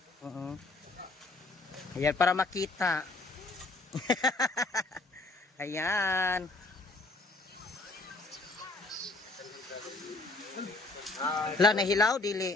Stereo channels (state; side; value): quieter; right; 3.2 dB